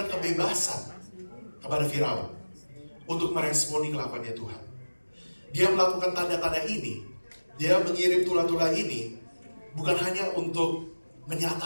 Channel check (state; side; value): inverted; both; correlation -1.00